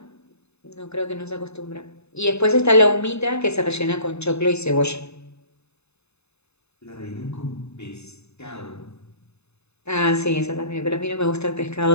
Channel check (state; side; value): late; right; 0.80 ms